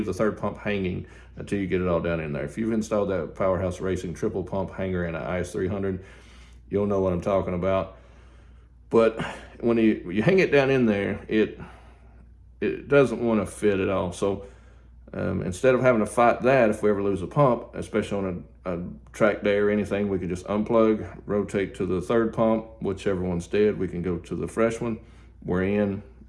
the third pump hanging until you get it all down in there. If you've installed that Powerhouse Racing triple pump hanger in an IS300, you'll know what I'm talking about. But when you hang it down in there, it doesn't want to fit at all. So instead of having to fight that, if we ever lose a pump, especially on a track day or anything, we can just unplug, rotate to the third pump, whichever one's dead, we can go to the fresh one. We're in,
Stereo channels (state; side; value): identical; both; correlation 1.00